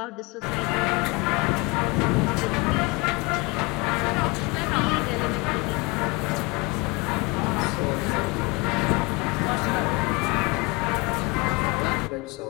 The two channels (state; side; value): quieter; right; 26.1 dB